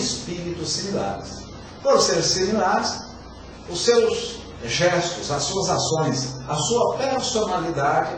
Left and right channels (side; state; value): both; identical; correlation 1.00